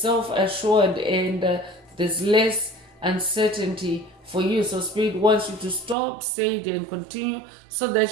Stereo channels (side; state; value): left; drops out; at 6.0 s